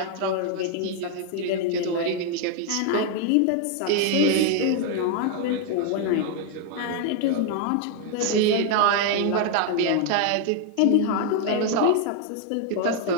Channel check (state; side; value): different; both; correlation 0.01